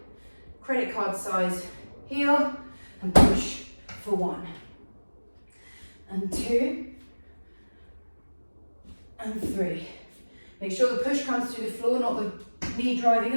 Credit card size heel and push for 1. And 2. And 3. Make sure the push comes through the floor, not the knee driving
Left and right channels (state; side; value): inverted; both; correlation -1.00